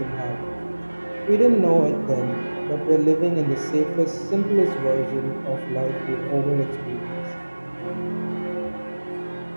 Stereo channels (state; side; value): inverted; both; correlation -1.00